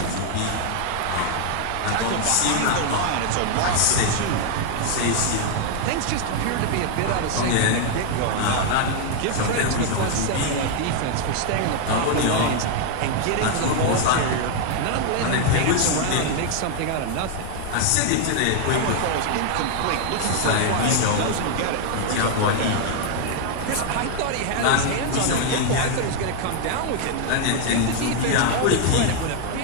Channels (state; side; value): different; both; correlation 0.00